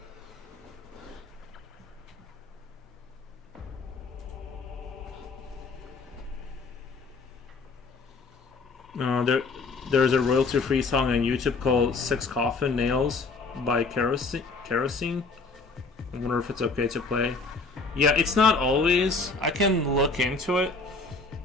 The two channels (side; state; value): right; quieter; 4.0 dB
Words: There's a royalty-free song on YouTube called 6 Coffin Nails by Kerosene. I wonder if it's okay to play. Yeah, it's not always. I can look into it,